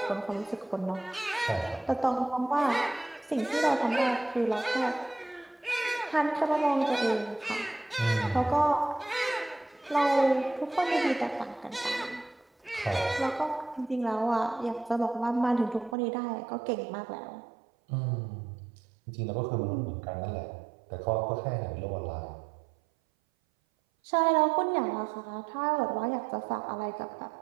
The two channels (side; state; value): left; drops out; at 16.0 s